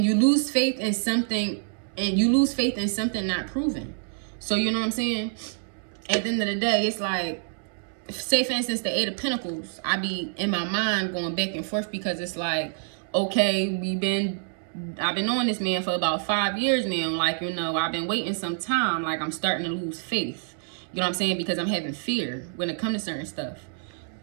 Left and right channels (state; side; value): silent; left; digital silence